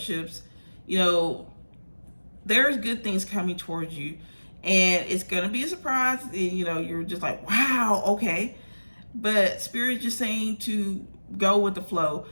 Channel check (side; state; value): both; inverted; correlation -1.00